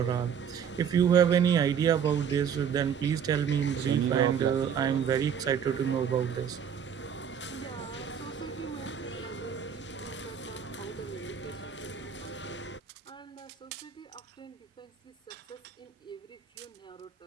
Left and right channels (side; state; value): left; quieter; 7.8 dB